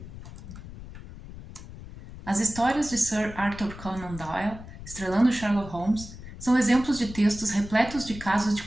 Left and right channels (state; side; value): noise; left; rumble, 13 dB below the sound